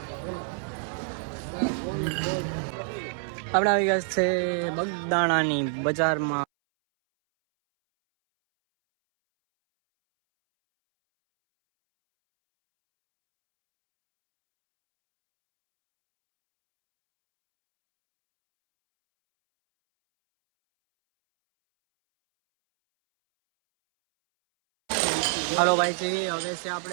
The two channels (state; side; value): silent; left; 60 dB below the other